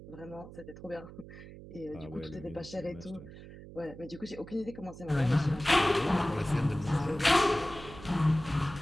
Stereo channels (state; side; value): noise; right; hum, 15 dB below the sound